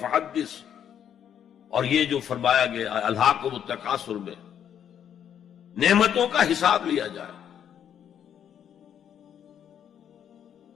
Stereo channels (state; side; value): quieter; right; 9.2 dB